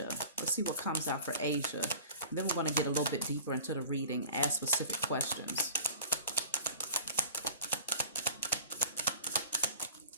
Let's see what comes out for Asia. And then we're going to get a little bit deeper into the reading, ask specific questions.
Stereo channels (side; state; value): both; inverted; correlation -0.40